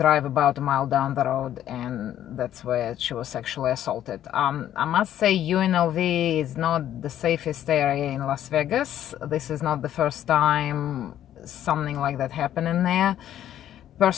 about a mile down the road, and that's where she was sexually assaulted. I must say UNLV is not the safest area in Las Vegas. This is not the first time something like that happened in there.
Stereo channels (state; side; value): quieter; right; 11.5 dB